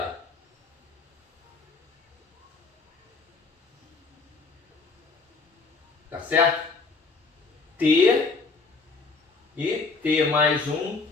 Tá certo? T e T mais 1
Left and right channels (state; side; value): quieter; right; 4.2 dB